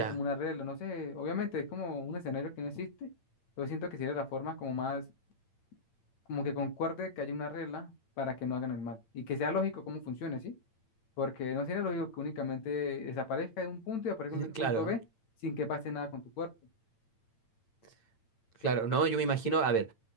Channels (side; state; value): right; late; 8.9 ms